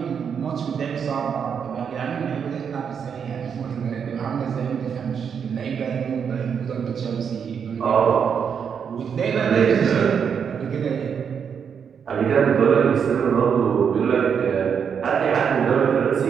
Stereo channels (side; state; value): left; quieter; 7.1 dB